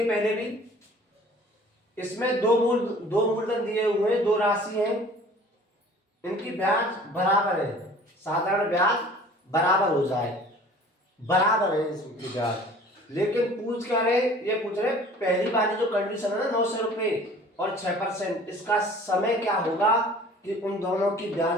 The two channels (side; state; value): both; normal; correlation 0.48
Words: पहले भी। इसमें दो मूलधन दिए हुए हैं, दो राशि हैं, इनकी ब्याज बराबर है, साधारण ब्याज बराबर हो जाए, बराबर है इसकी ब्याज। लेकिन पूछ क्या रहे, ये पूछ रहे पहली वाली जो कंडीशन है ना 900 रुपए और 6%, इसका समय क्या होगा कि उन दोनों की